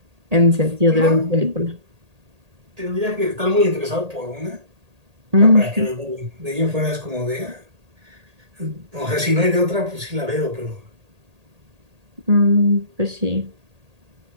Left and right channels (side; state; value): left; late; 1.8 ms